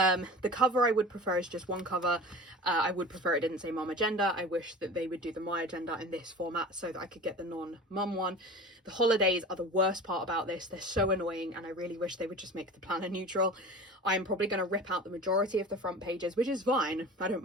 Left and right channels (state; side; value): normal; both; correlation 0.36